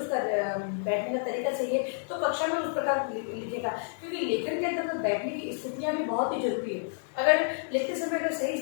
बैठने का तरीका सही है तो कक्षा में उस प्रकार लिखेगा, क्योंकि लेखन के अंदर बैठने की स्थितियाँ भी बहुत ही जरूरी है। अगर लिखते समय अगर सही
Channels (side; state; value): right; silent; digital silence